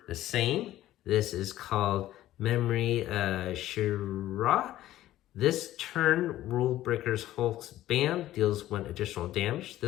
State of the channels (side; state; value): right; quieter; 14.2 dB